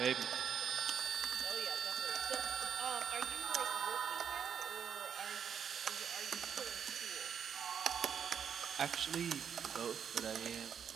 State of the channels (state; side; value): quieter; left; 7.8 dB